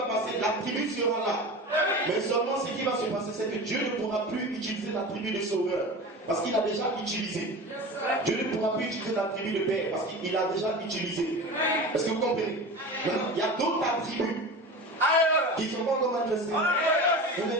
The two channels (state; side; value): normal; both; correlation 0.32